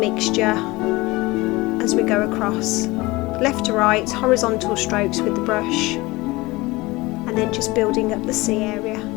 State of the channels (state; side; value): quieter; right; 21.4 dB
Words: as we go across, left to right, horizontal strokes with the brush, and then just building up the sea area.